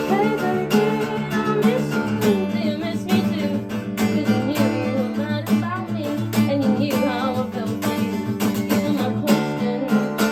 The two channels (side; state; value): both; identical; correlation 1.00